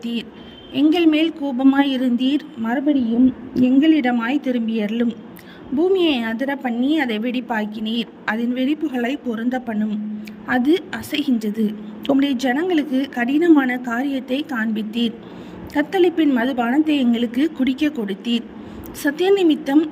எங்கள் மேல் கோபமாயிருந்தீர், மறுபடியும் எங்களிடமாய் திரும்பியருளும். பூமியை அதிர பண்ணி அதை வெடிப்பாக்கினீர், அதன் வெடிப்புகளை பொருந்த பண்ணும். அது அசைகின்றது. உம்முடைய ஜனங்களுக்கு கடினமான காரியத்தை காண்பித்தீர். கத்தளிப்பின் மதுபானத்தை எங்களுக்கு குடிக்க கொடுத்தீர். சத்திய நிமித்தம்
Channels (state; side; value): identical; both; correlation 1.00